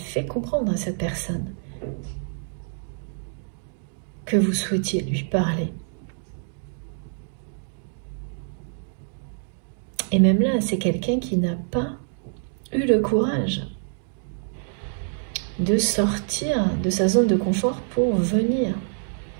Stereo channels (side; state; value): left; silent; digital silence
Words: comprendre à cette personne que vous souhaitiez lui parler. Et même là, c'est quelqu'un qui n'a pas eu le courage de sortir de sa zone de confort pour venir